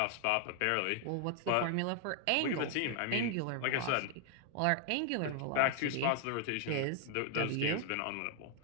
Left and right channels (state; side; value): different; both; correlation 0.00